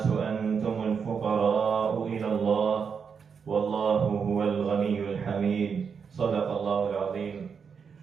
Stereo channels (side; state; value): left; quieter; 6.3 dB